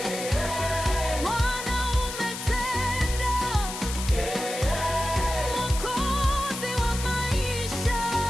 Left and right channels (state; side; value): noise; left; hiss, 8 dB below the sound